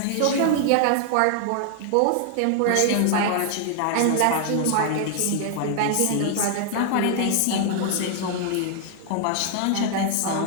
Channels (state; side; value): different; both; correlation 0.00